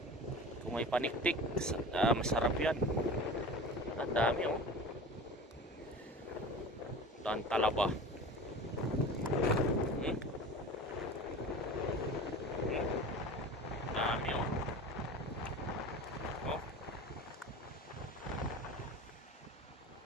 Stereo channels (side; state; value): both; normal; correlation 0.35